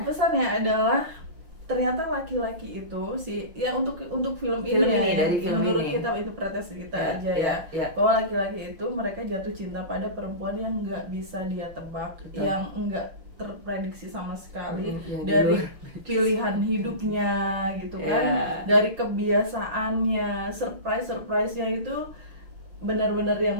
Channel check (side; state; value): left; late; 6.2 ms